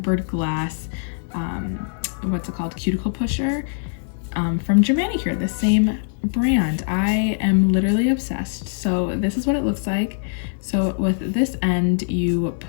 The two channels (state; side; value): silent; right; 64 dB below the other